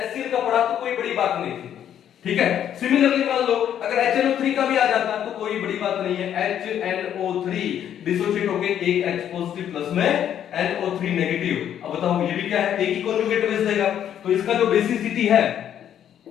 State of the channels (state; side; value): quieter; right; 10.0 dB